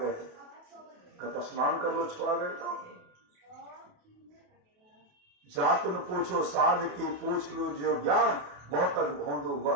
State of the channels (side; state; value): left; late; 28 ms